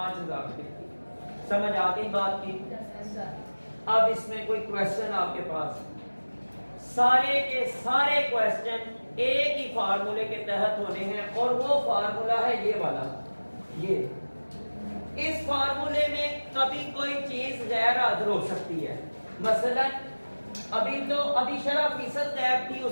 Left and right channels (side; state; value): both; inverted; correlation -1.00